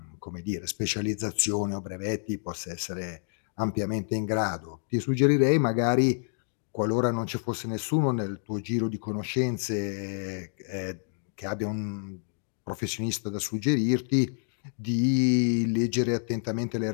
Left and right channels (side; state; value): right; silent; digital silence